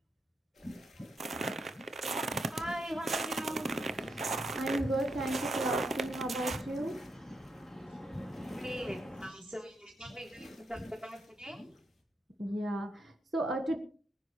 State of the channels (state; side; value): normal; both; correlation 0.81